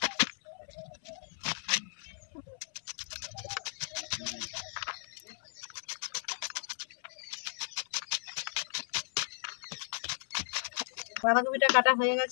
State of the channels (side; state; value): right; silent; 54 dB below the other